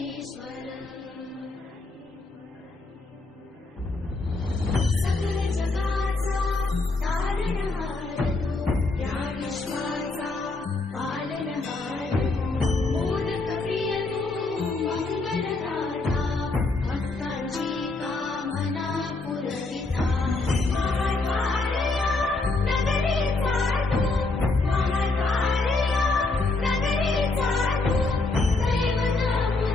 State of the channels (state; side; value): quieter; right; 3.3 dB